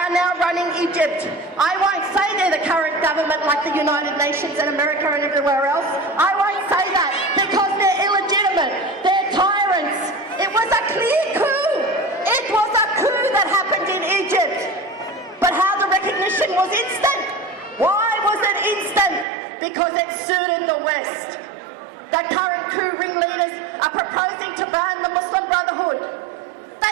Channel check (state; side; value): drops out; left; at 19.2 s